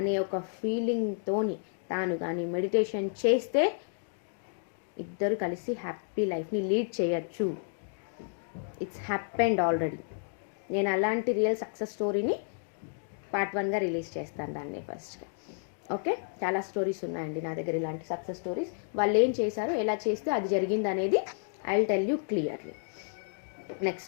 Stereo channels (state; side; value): silent; right; digital silence